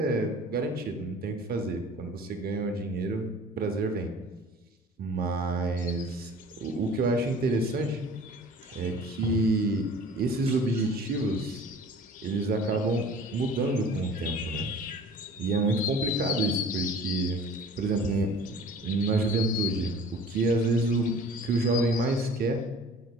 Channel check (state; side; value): normal; both; correlation 0.46